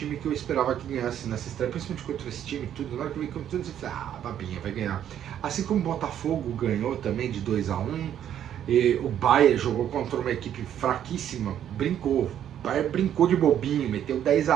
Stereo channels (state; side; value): quieter; left; 10.2 dB